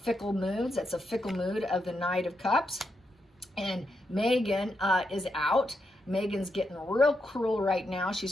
moods. That's a fickle mood of the Knight of Cups. And Meghan is out. Meghan's getting real cruel right now. She's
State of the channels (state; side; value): normal; both; correlation 0.83